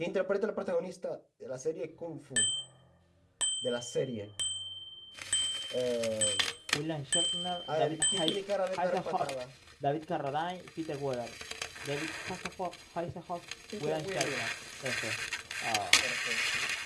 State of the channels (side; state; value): both; identical; correlation 1.00